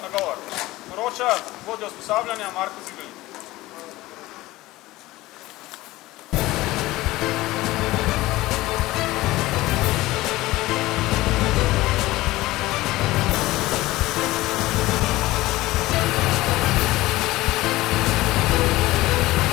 nagovor. Poroča vodja usposabljanja Marko Zibelnik.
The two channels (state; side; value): quieter; right; 18.3 dB